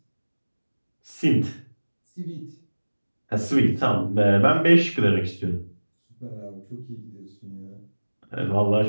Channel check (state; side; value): inverted; both; correlation -1.00